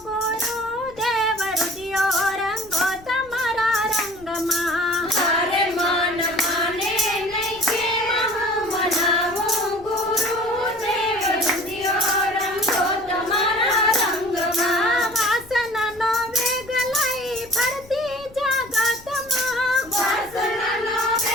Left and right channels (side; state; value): left; noise; rumble, 23 dB below the sound